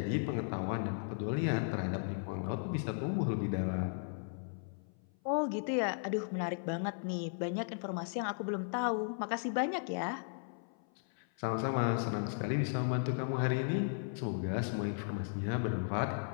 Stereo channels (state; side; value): silent; right; 54 dB below the other